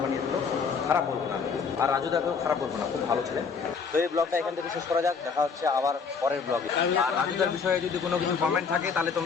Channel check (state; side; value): quieter; right; 5.5 dB